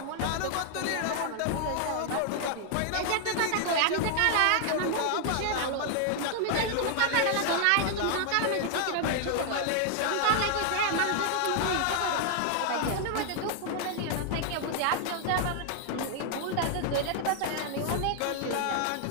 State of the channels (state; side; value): different; both; correlation 0.00